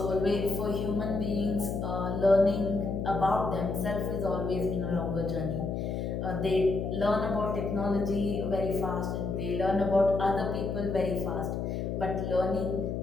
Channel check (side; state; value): left; noise; hum, 2 dB below the sound